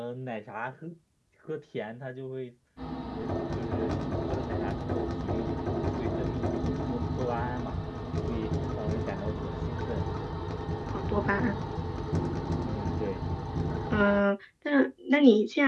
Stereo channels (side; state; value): both; identical; correlation 1.00